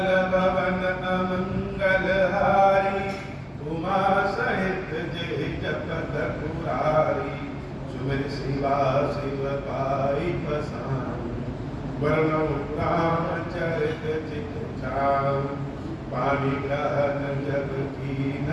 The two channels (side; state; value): both; identical; correlation 1.00